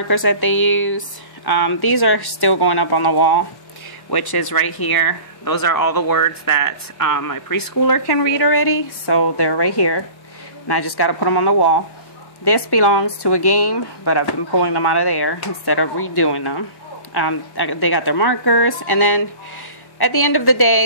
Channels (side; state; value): right; late; 1.1 ms